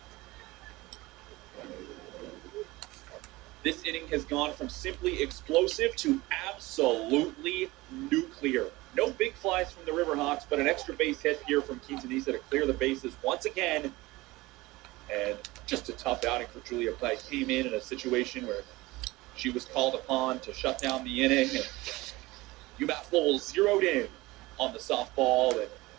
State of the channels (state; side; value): quieter; left; 20.6 dB